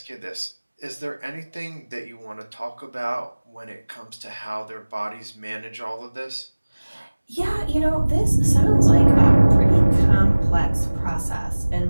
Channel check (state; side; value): inverted; both; correlation -1.00